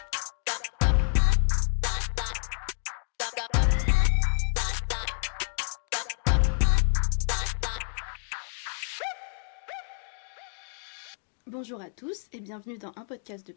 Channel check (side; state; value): right; silent; 59 dB below the other